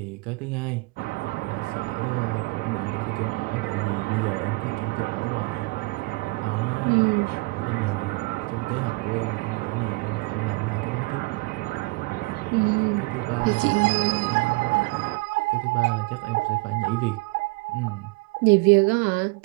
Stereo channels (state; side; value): quieter; left; 25.7 dB